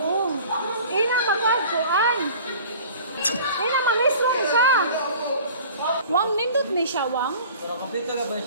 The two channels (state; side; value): inverted; both; correlation -0.44